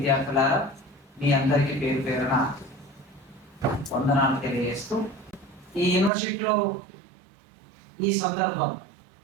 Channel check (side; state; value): left; drops out; at 6.1 s